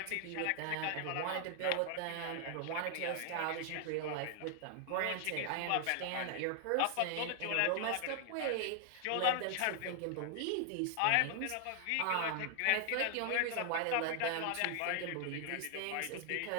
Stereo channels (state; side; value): different; both; correlation 0.00